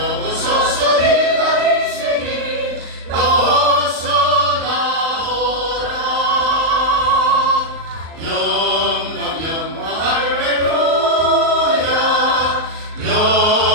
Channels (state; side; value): late; left; 38 ms